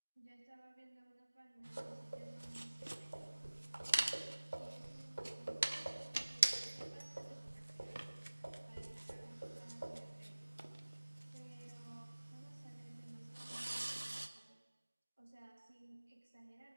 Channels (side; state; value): both; inverted; correlation -1.00